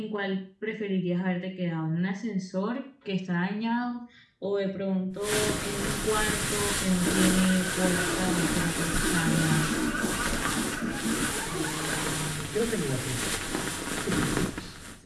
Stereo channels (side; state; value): both; identical; correlation 1.00